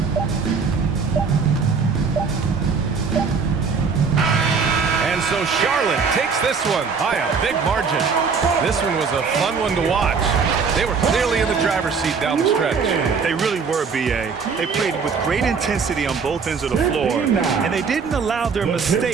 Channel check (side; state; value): left; quieter; 5.5 dB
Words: And so Charlotte takes this one by a big margin. This one was a fun one to watch. They were clearly in the driver's seat down the stretch. They really were, B.A. They played with great intensity on both ends of the floor, and they didn't allow their